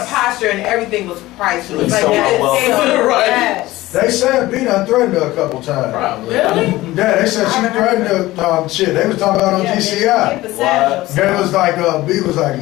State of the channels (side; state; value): right; quieter; 17.7 dB